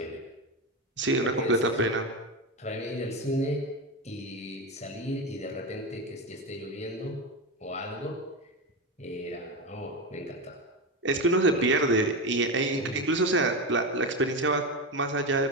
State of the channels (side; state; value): both; normal; correlation 0.16